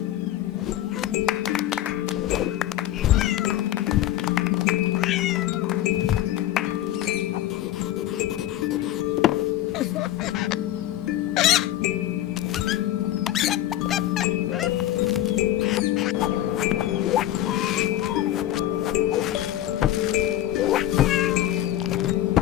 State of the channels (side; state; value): right; quieter; 13.3 dB